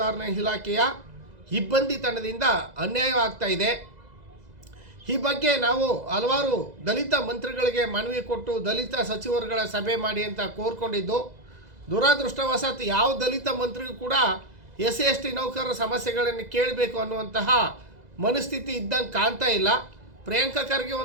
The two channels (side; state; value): left; late; 2.0 ms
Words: ಇಲಾಖೆಯ ಇಬ್ಬಂದಿ ತಂಡದಿಂದ ಅನ್ಯಾಯವಾಗ್ತಾ ಇದೆ. ಈ ಬಗ್ಗೆ ನಾವು ಹಲವಾರು ದಲಿತ ಮಂತ್ರಿಗಳಿಗೆ ಮನವಿ ಕೊಟ್ಟು ದಲಿತ ಸಚಿವರುಗಳ ಸಭೆ ಮಾಡಿ ಅಂತ ಕೋರ್ಕೊಂಡಿದ್ದು, ದುರದೃಷ್ಟವಶಾತ್ ಯಾವ ದಲಿತ ಮಂತ್ರಿಗೂ ಕೂಡ SC/ST ನೌಕರರ ಸಮಸ್ಯೆಗಳನ್ನು ಕೇಳಬೇಕು ಅನ್ನುವಂತಹ ಮನಸ್ಥಿತಿ ಇದ್ದಂಗೆ ಕಾಣ್ತಾ ಇಲ್ಲ. ಪ್ರಿಯಾಂಕಾ ಖರ್ಗೆ